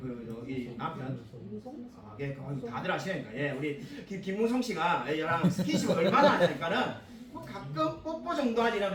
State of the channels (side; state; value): both; identical; correlation 1.00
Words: 이 남편 다들 아시니까 우리 김무성 씨가 얘랑 스킨십을 얼마나 하니까는 뭐 가끔 뽀뽀 정도 하지